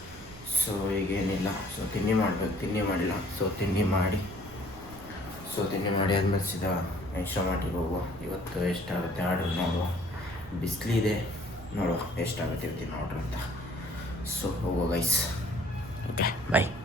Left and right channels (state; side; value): noise; right; rumble, 18 dB below the sound